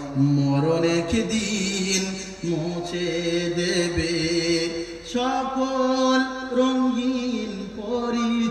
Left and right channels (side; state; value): both; identical; correlation 1.00